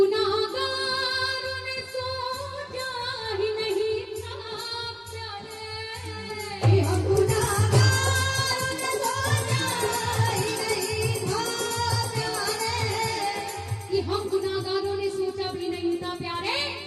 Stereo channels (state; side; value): identical; both; correlation 1.00